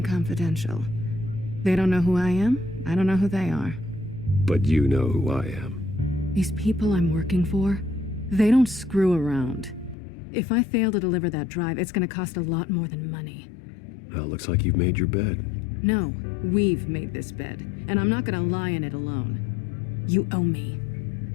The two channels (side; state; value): right; drops out; at 10.0 s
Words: confidential. They don't know who I am, I don't know who they are. But you know who I am. These people I'm working for, they don't screw around. If I fail to deliver that drive, it's gonna cost a lot more than money. Well, looks like you've made your bed. No, we've made this bed, and I'm not gonna lie in it alone. You owe me.